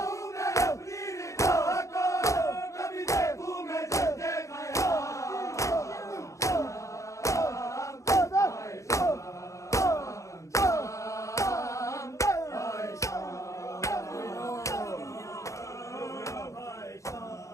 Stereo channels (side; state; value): right; late; 0.15 ms